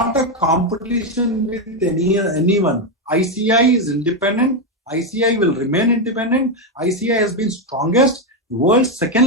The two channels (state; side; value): normal; both; correlation 0.06